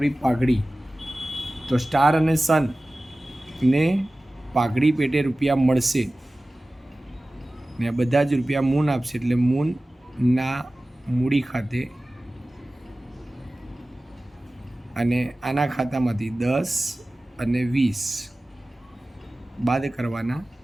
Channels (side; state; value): both; normal; correlation 0.97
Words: પાઘડી, તો સ્ટાર અને સન ને પાઘડી પેટે રૂપિયા મળશે, ને આ બધા જ રૂપિયા મૂન આપશે, એટલે મૂનના મૂડી ખાતે. અને આના ખાતામાંથી 10 અને 20 બાદ કરવાના